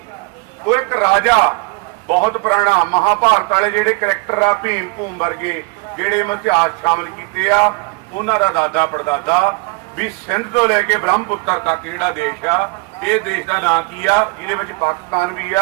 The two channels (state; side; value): quieter; left; 27.6 dB